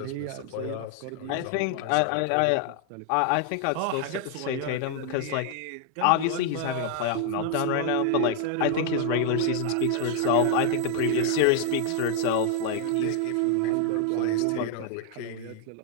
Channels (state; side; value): different; both; correlation 0.00